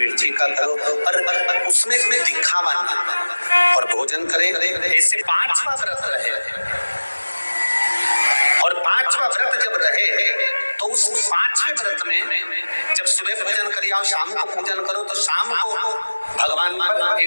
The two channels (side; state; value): both; inverted; correlation -1.00